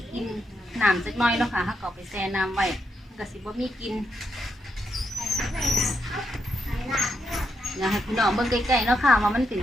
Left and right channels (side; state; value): both; normal; correlation 0.81